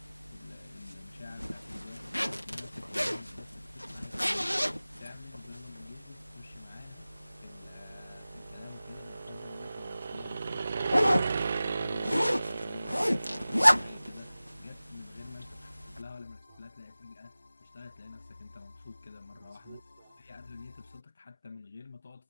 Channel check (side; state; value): both; inverted; correlation -0.97